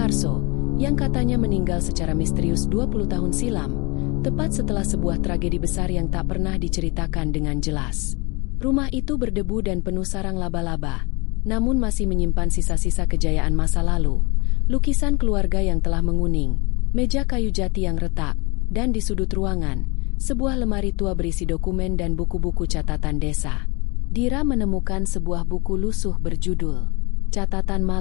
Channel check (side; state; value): right; quieter; 27.9 dB